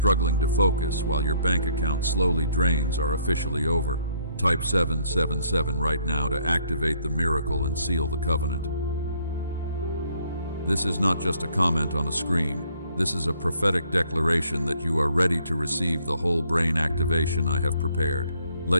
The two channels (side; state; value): both; inverted; correlation -0.66